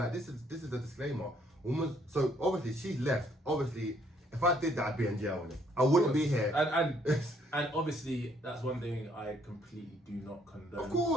this is a disclaimer. Woman, so obviously she's left. Obviously, if I did that, I'd be in jail. I wouldn't be here. And obviously, that's one thing I completely do not condone. Of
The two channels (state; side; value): normal; both; correlation 0.66